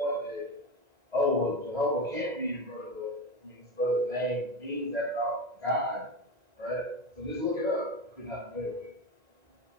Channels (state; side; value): late; left; 1.9 ms